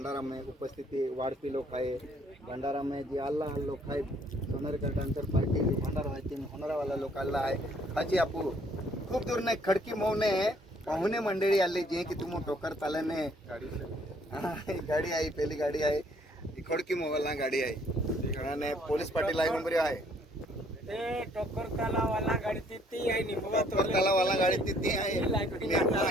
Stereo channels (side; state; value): both; normal; correlation 0.63